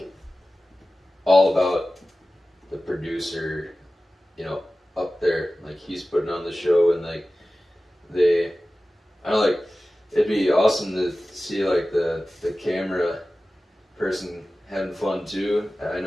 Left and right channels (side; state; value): both; normal; correlation 0.96